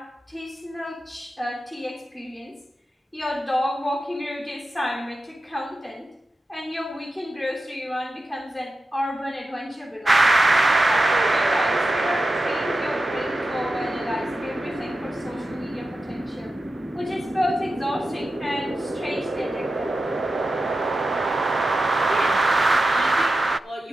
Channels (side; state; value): both; normal; correlation 0.92